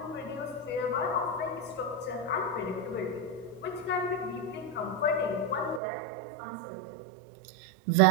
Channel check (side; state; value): left; drops out; at 5.8 s